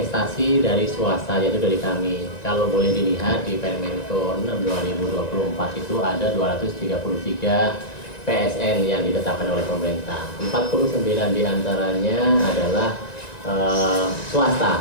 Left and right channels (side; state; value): right; late; 1.9 ms